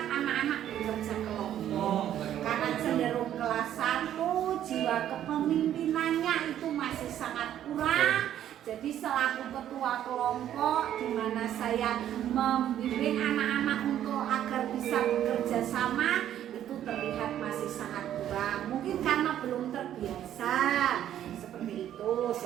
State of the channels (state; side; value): quieter; left; 11.1 dB